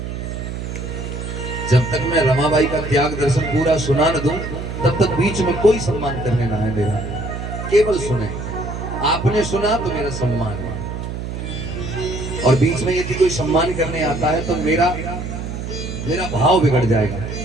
जब तक मैं रमाबाई का त्याग दर्शन पूरा सुना न दूं, तब तक बीच में कोई सम्मान करने ना आए मेरा। केवल सुने, आपने सुना तो मेरा सम्मान है, और बीच में यदि कोई सम्मान करने आता है तो मेरा भाव बिगड़ जाएगा।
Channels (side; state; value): right; noise; hum, 6 dB below the sound